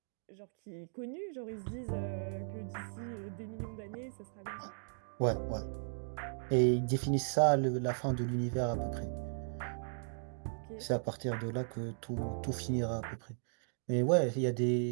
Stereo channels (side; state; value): left; silent; digital silence